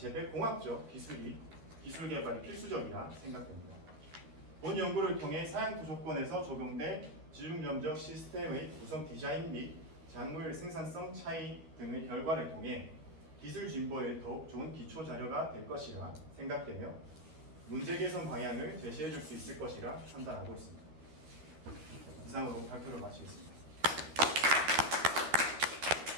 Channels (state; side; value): late; left; 13 ms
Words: 공학적 기술 개발이 필수적이라 생각됩니다. 본 연구를 통해 사양토 조건에서 적용된 지중점적 시스템의 구성 디자인 및 작물 생산성 차이 등의 결과를 통해 기술 진보에 더욱 좋은 기초 자료가 될 것이라 생각되며 문제 개선 방향을 제시해 줄 수 있을 것이라 판단하고 있습니다. 이상으로 발표를 마치겠습니다.